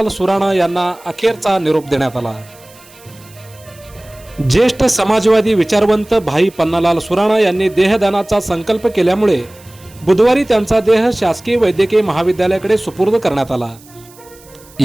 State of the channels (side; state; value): right; noise; hiss, 25 dB below the sound